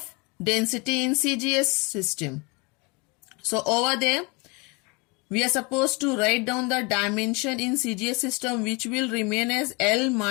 density in CGS system. So over there, we are supposed to write down the dimension in CGS system, which will remain as L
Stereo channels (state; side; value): quieter; right; 28.2 dB